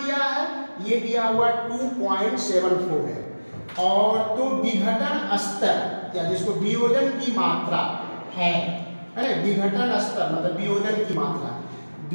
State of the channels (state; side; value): inverted; both; correlation -1.00